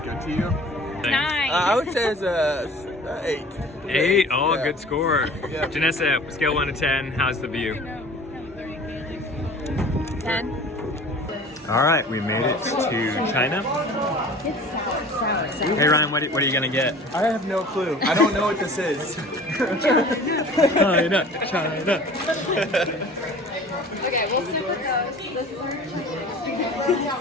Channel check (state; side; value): normal; both; correlation 0.44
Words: to you? 9. I would say it's a 8. 8? Oh, Yeah. good score. Yeah. Janessa, scale 1 to 10. How's the view? 10. All right, we made it to China. It's sour. Hey Ryan, what are you gonna get? I have no clue. I don't know what this is. China, China. Okay, we'll super coast. This is our